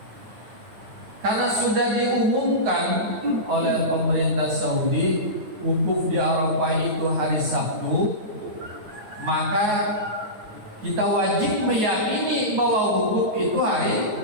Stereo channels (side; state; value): left; late; 9.4 ms